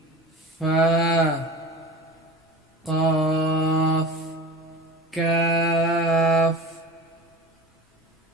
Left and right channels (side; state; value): both; normal; correlation 0.35